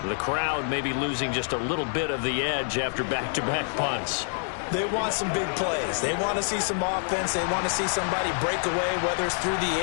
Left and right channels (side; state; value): right; silent; 56 dB below the other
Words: The crowd may be losing just a little bit of the edge after back-to-back punts. They want some big plays. They want to see some offense. They want to see somebody break away, whether it's through the